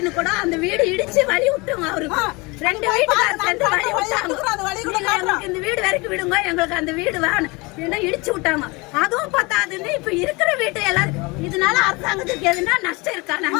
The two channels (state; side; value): quieter; right; 25.8 dB